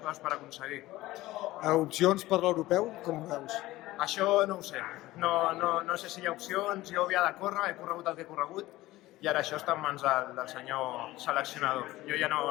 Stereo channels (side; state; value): right; quieter; 17.4 dB